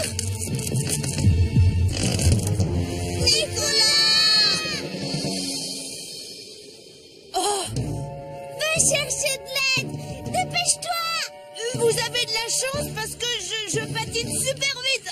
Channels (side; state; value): both; identical; correlation 1.00